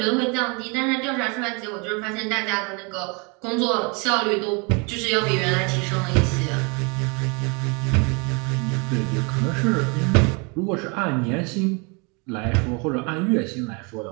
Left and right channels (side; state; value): left; quieter; 31.6 dB